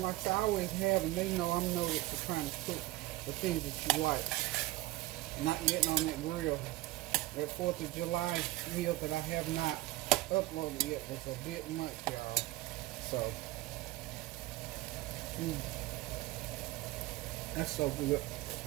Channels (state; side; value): quieter; left; 18.4 dB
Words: like I always have, and they know I'm noted for trying to cook the things that you like. Not getting on that grill. That 4th of July meal that I have not uploaded yet was a bit much, y'all. So, that's so good.